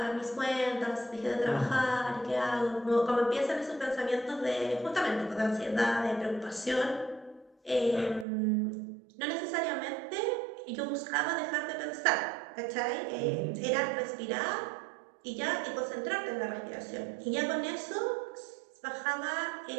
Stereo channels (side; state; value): left; drops out; at 8.2 s